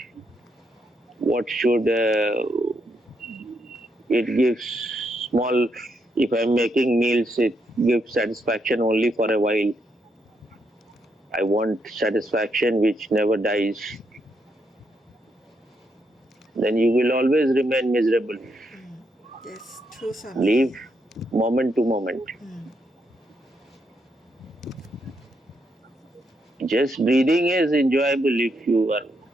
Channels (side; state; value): both; normal; correlation 0.79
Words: What should it gives small? If I'm making meals, it gives satisfaction only for a while. I want satisfaction which never dies. Then you will always remain miserable. Yes, true, Swamiji. Live moment to moment. Just breathing is enjoyable if you are